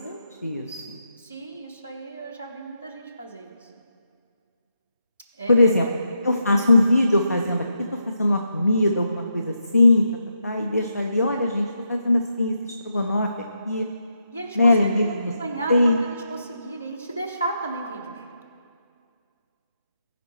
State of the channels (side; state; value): both; inverted; correlation -0.83